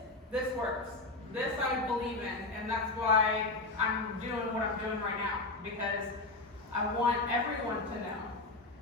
works. This I believe in, and that's why I'm doing what I'm doing right now, because I want everyone to know.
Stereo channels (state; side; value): quieter; right; 3.1 dB